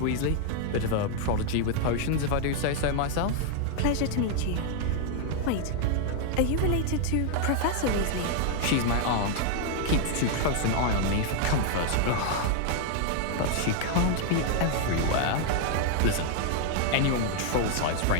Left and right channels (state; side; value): different; both; correlation 0.00